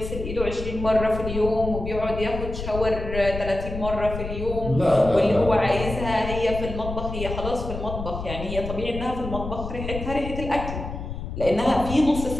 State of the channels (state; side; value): noise; left; rumble, 7 dB below the sound